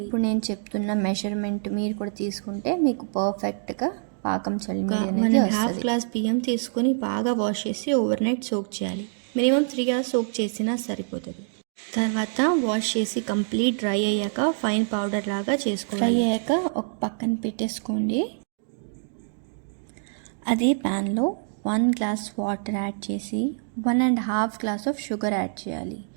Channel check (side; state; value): left; silent; digital silence